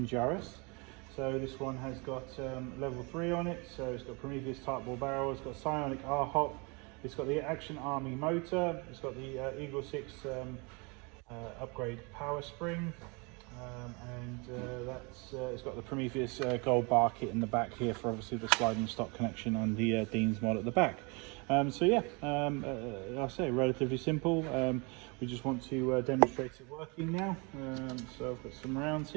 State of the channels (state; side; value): quieter; left; 30.2 dB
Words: So this one has got level 3 on it, so it's got Prometheus type ball barrel, it's got Psionic R Hop, it's got the Action Army motor, it's got the EagleSix upgrade power spring, it's got the Prometheus gold bar kit in the back here for obviously the sliding stock connection and the Dean's mod at the back. So yeah, I'll say relatively simple. We just want to demonstrate it working now. So I've got some rounds